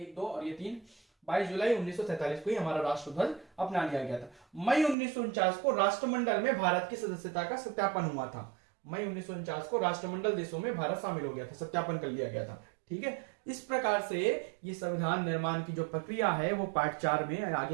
2 और ये 3। 22 जुलाई 1947 को ही हमारा राष्ट्रध्वज अपना लिया गया था। मई 1949 को राष्ट्रमंडल में भारत की सदस्यता का सत्यापन हुआ था। मई 1949 को राष्ट्रमंडल देशों में भारत शामिल हो गया था, सत्यापन कर लिया गया था, ठीक है। इस प्रकार से ये संविधान निर्माण की जो प्रक्रिया है वो पार्ट 4 में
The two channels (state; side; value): drops out; left; at 5.0 s